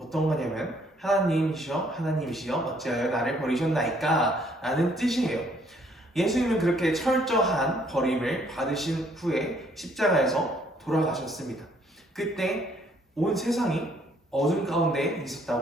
거냐면 하나님이시여 하나님이시여 어찌하여 나를 버리셨나이까 라는 뜻이에요. 예수님은 그렇게 철저한 버림을 받으신 후에 십자가에서 돌아가셨습니다. 그때 온 세상이 어둠 가운데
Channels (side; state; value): both; normal; correlation 0.65